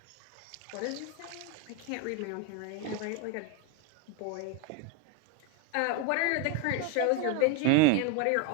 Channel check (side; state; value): both; different; correlation 0.02